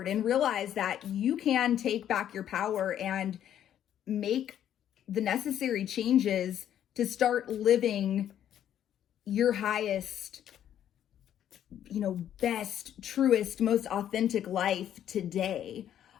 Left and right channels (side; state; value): right; quieter; 10.5 dB